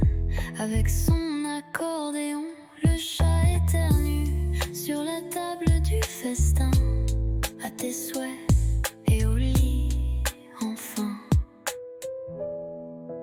avec son accordéon. Le chat éternue sur la table du festin. À tes souhaits et au lit enfin.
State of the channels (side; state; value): both; identical; correlation 1.00